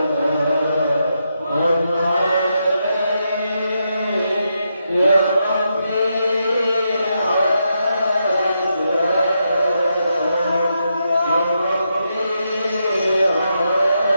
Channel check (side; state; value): both; inverted; correlation -0.83